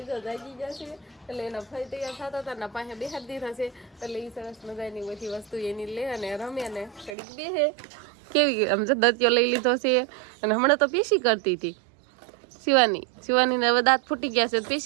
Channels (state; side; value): drops out; left; at 7.2 s